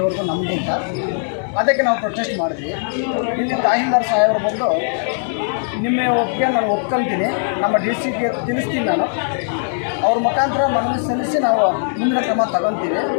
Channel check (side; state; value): right; silent; digital silence